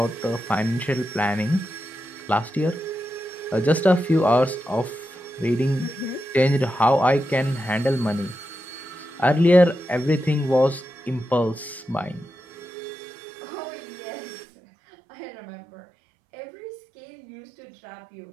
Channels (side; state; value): left; drops out; at 12.7 s